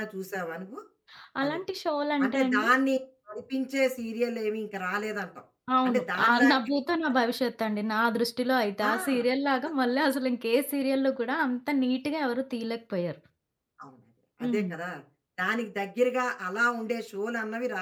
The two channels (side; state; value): both; identical; correlation 1.00